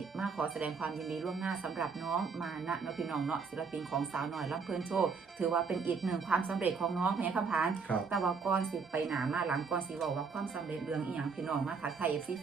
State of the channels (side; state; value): left; quieter; 5.2 dB